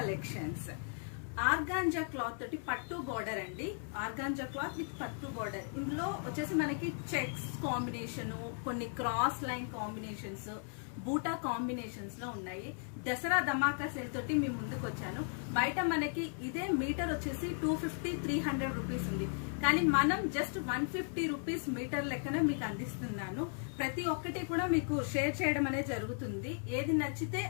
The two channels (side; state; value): right; silent; 54 dB below the other